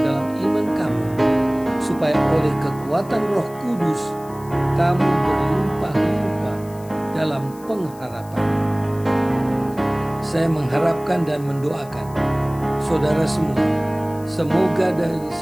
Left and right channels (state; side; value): noise; left; hiss, 23 dB below the sound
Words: iman kamu, supaya oleh kekuatan Roh Kudus kamu berlimpah-limpah dalam pengharapan. Saya mengharapkan dan mendoakan saudara semua, semoga dari